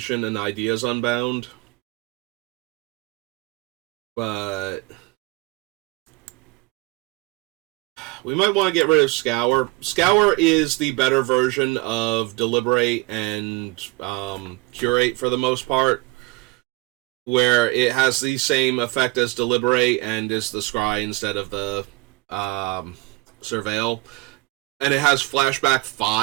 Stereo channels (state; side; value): quieter; left; 23.1 dB